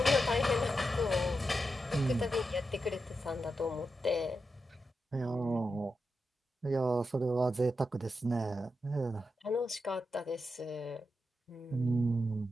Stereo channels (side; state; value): both; normal; correlation 0.87